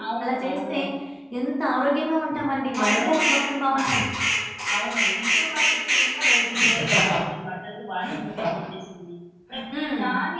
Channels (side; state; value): both; identical; correlation 1.00